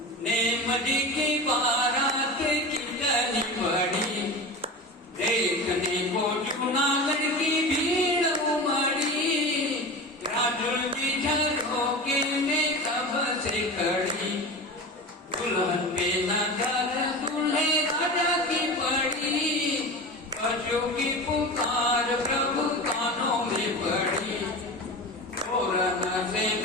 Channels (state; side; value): normal; both; correlation 0.29